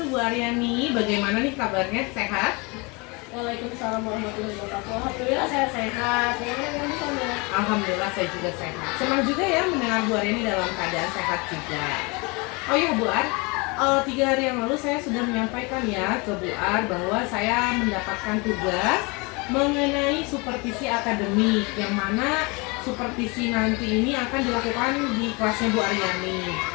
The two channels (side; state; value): right; quieter; 28.3 dB